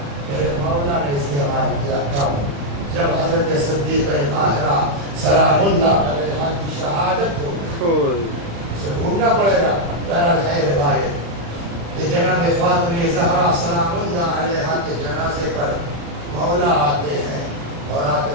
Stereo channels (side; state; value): left; late; 36 ms